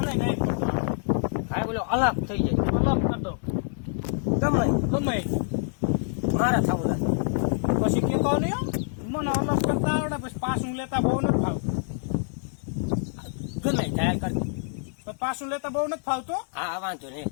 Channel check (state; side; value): silent; right; digital silence